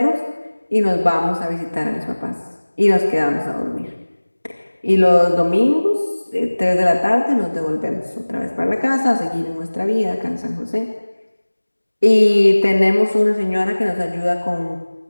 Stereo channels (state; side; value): inverted; both; correlation -1.00